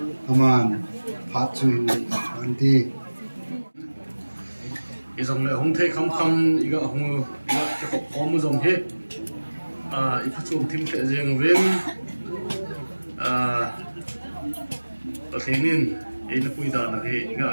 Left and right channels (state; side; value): inverted; both; correlation -1.00